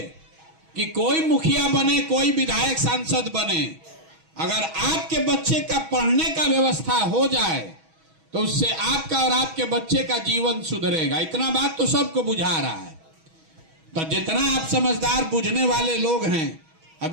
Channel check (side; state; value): left; late; 6.2 ms